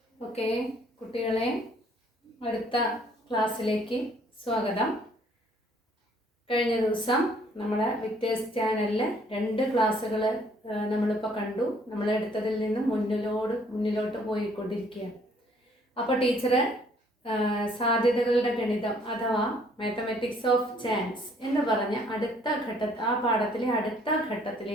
Okay കുട്ടികളെ, അടുത്ത ക്ലാസ്സിലേക്ക് സ്വാഗതം. കഴിഞ്ഞ ദിവസം നമ്മുടെ വിക്ടേഴ്സ് ചാനലിൽ 2 ക്ലാസ്സുകൾ നമ്മളിപ്പോൾ കണ്ടു. നമ്മളെടുത്തതിൽ നിന്ന് മുന്നിലോട്ട് പോയിക്കൊണ്ടിരിക്കുകയാണ്. അപ്പോൾ ടീച്ചർ സാധ്യതകളുടെ ഗണിതം അഥവാ മാത്തമാറ്റിക്സ് ഓഫ് ചാൻസ് എന്ന് പറഞ്ഞ ആ പാഠത്തിലെ അടുത്ത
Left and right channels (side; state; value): both; normal; correlation 0.62